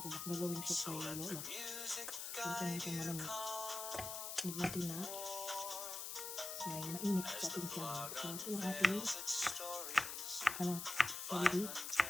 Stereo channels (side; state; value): left; noise; hiss, 5 dB below the sound